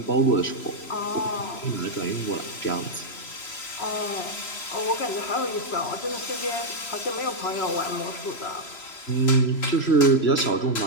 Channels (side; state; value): right; late; 3.0 ms